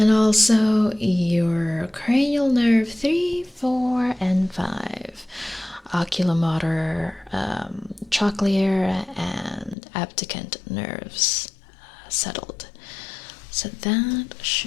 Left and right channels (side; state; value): right; drops out; at 9.8 s